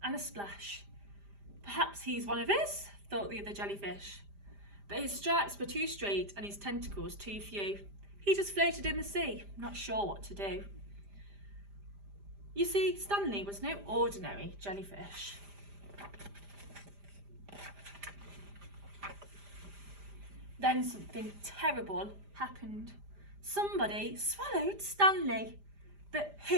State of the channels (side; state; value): left; late; 5.0 ms